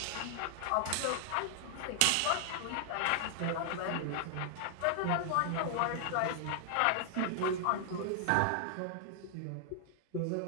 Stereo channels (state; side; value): different; both; correlation 0.00